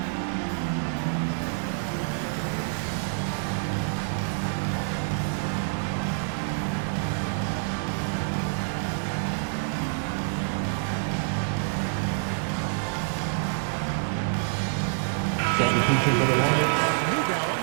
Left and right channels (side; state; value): left; silent; 60 dB below the other